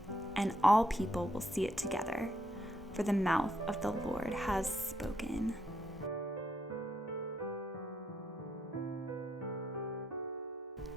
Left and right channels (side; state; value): both; normal; correlation 0.77